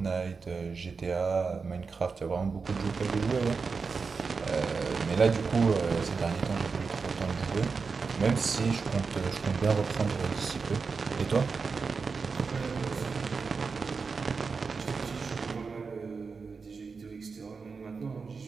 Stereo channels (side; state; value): left; quieter; 4.9 dB